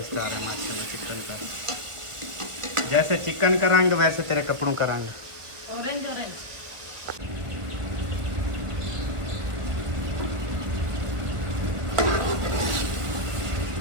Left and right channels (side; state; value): left; late; 1.4 ms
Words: आ रहा है माशाल्लाह चिकन का। जैसे चिकन का रंग वैसे तेरे कपड़ों का रंग। Orange orange.